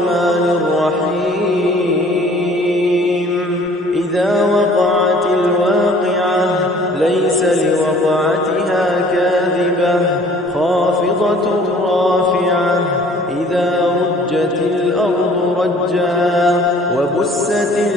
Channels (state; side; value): normal; both; correlation 0.53